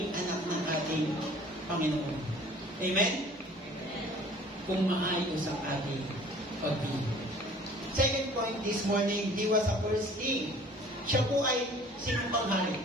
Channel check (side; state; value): both; normal; correlation 0.50